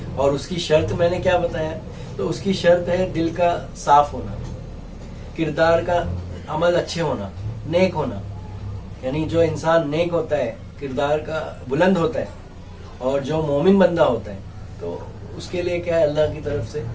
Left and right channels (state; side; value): identical; both; correlation 1.00